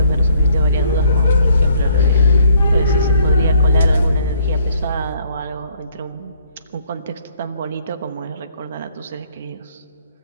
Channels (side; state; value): both; inverted; correlation -0.64